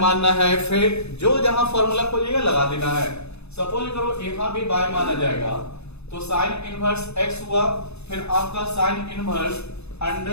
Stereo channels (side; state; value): right; late; 0.80 ms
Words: है, फिर जो जहां फॉर्मूला खोजिएगा लगा देना है। सपोज करो यहां भी बाय माना जाएगा तो साइन इनवर्स एक्स हुआ, फिर आपका sine inverse